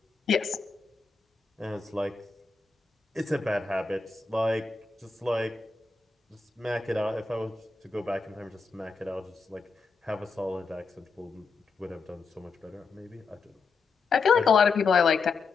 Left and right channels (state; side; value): quieter; right; 4.5 dB